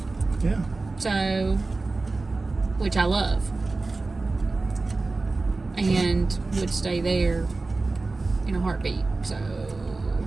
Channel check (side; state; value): left; quieter; 3.5 dB